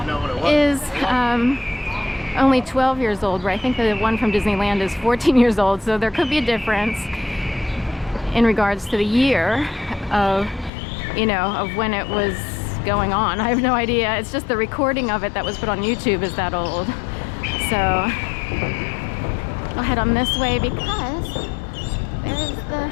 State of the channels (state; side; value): drops out; right; at 10.7 s